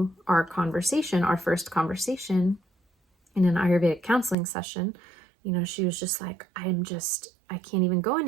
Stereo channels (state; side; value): drops out; left; at 4.4 s